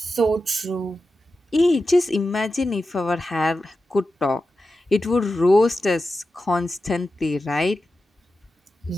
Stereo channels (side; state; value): both; normal; correlation 0.91